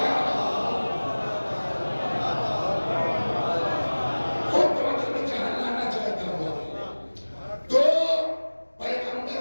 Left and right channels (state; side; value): inverted; both; correlation -1.00